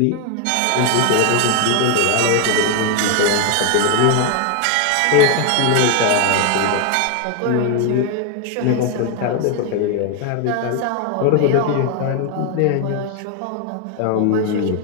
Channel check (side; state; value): both; different; correlation 0.01